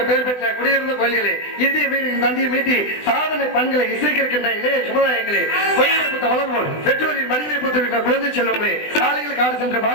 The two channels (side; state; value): right; late; 20 ms